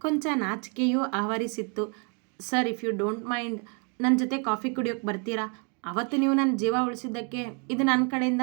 ಕೊಂಚ ನಾಚಿಕೆಯೂ ಆವರಿಸಿತ್ತು. Sir, if you don't mind, ನನ್ನ ಜೊತೆ ಕಾಫಿ ಕುಡಿಯೋಕೆ ಬರ್ತೀರಾ? ಅವತ್ತು ನೀವು ನನ್ನ ಜೀವ ಉಳಿಸಿದ್ದಕ್ಕೆ ಇದು ನನ್ನ ಕಡೆಯಿಂದ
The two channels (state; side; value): quieter; left; 37.2 dB